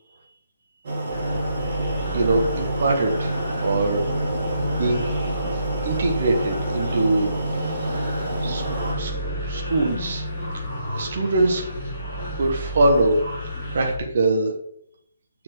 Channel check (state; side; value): inverted; both; correlation -0.77